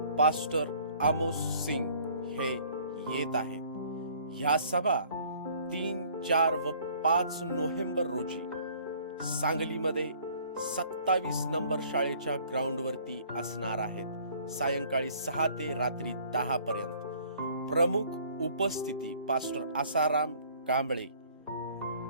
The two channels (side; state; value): both; inverted; correlation -0.56